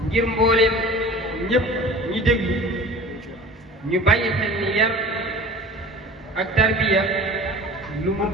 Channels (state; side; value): normal; both; correlation 0.41